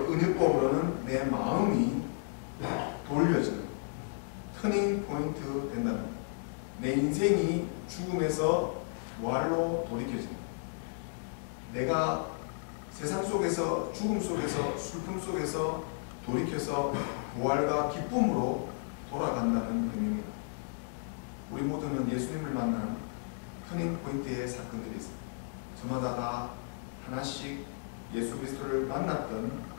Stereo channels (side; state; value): right; silent; digital silence